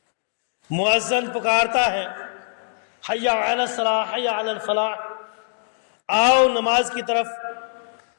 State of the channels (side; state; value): right; silent; digital silence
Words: مؤذن پکارتا ہے حی علی الصلاۃ حی علی الفلاح، آؤ نماز کی طرف،